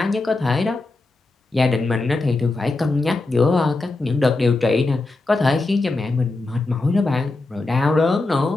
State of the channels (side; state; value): right; quieter; 3.2 dB